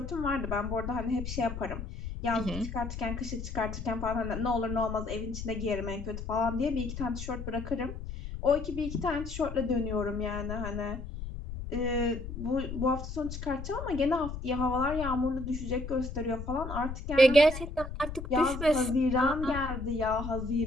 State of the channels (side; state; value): left; noise; rumble, 7 dB below the sound